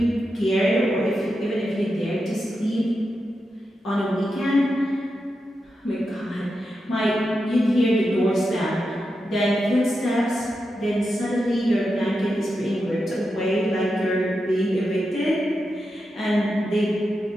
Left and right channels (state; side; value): normal; both; correlation 0.88